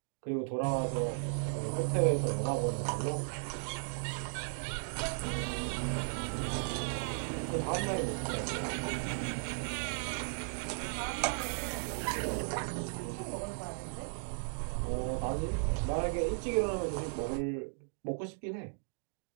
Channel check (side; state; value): left; silent; digital silence